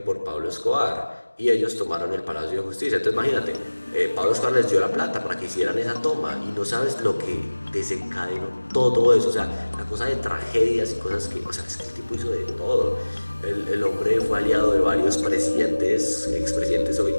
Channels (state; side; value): inverted; both; correlation -1.00